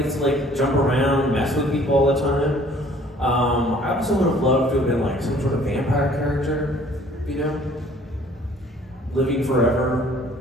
gets to like jump around, mess with people all the time. I also would have loved to have been like some sort of vampire character, you know? living forever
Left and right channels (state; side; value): normal; both; correlation 0.55